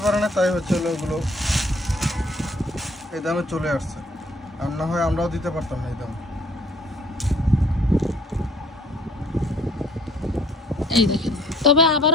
পারে না, তাই হচ্ছে হলো ওগুলো এই দামে চলে আসছে, আর না হয় আমরাও দিতে পারতাম না এই দাম। এই দেখেন, তবে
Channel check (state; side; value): normal; both; correlation 0.59